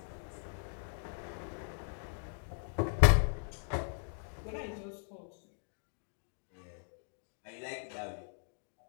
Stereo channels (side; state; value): right; silent; digital silence